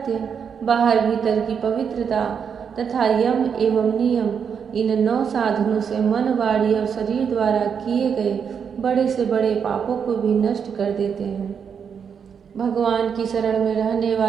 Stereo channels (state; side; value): quieter; left; 7.0 dB